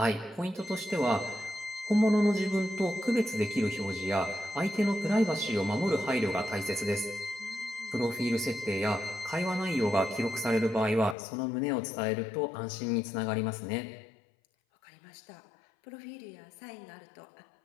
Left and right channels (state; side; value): drops out; right; at 11.2 s